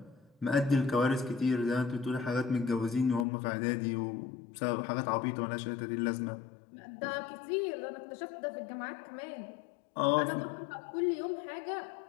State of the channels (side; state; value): right; drops out; at 3.2 s